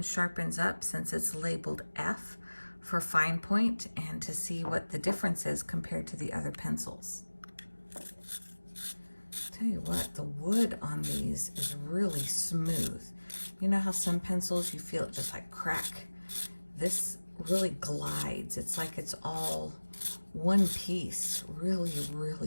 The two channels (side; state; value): both; inverted; correlation -1.00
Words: sharpens up since it's labeled F for fine point, and to see what the difference is compared to the other pencils. Tell you what, the wood on these is really smooth. You know how some pencils you feel it just like crack? This really glides. It's like it's all one piece, really,